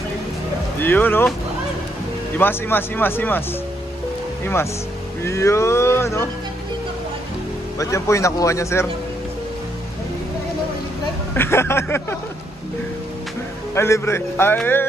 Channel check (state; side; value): normal; both; correlation 0.75